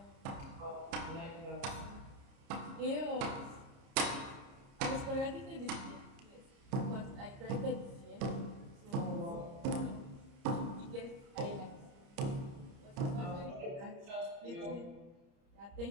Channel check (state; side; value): late; left; 30 ms